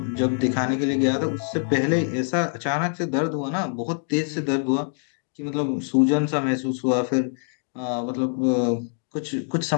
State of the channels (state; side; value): silent; right; digital silence